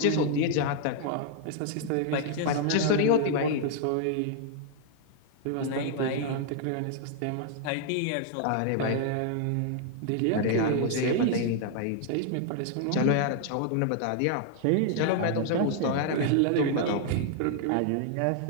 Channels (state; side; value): different; both; correlation 0.00